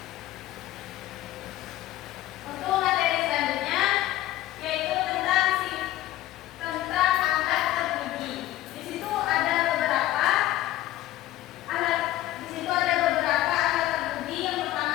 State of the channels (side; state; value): right; quieter; 15.0 dB